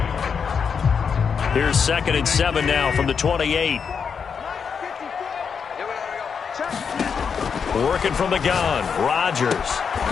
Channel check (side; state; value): right; quieter; 6.4 dB